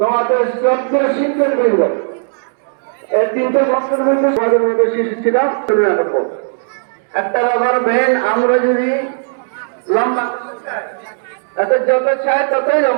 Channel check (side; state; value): left; silent; digital silence